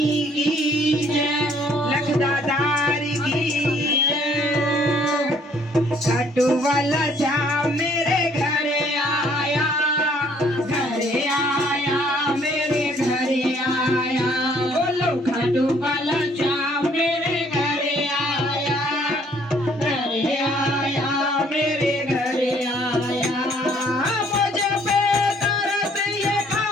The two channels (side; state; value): both; normal; correlation 0.62